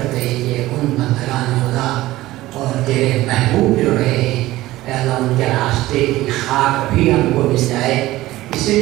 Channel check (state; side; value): quieter; left; 17.0 dB